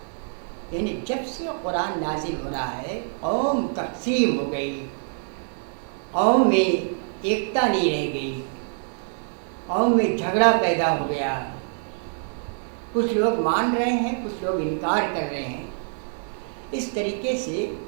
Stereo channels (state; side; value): silent; left; digital silence